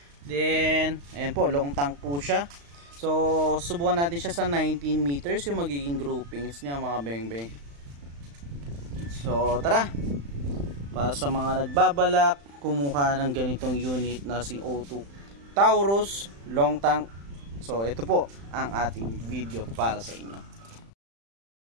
Then, ayan po, long tank po siya. So, subukan natin siya sa 19 meters yung magiging groupings niya mga bengbeng. So, tara. Para sa mga nagbabalak kumuha ng ganitong unit na CO2 Taurus long tank. So, ito po ang ating video para sa inyo.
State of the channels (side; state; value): left; late; 35 ms